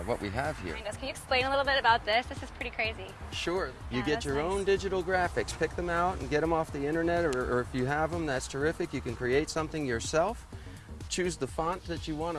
we have here. Can you explain a little bit about this? This is pretty crazy. Sure. You get your own digital graphics, pick them out and get them off the internet, or if you have them, that's terrific. You can create something yourself. Choose the font that you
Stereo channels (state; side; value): identical; both; correlation 1.00